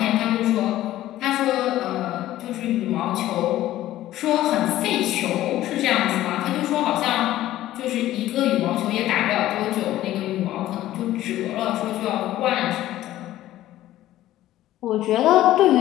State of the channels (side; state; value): right; quieter; 14.3 dB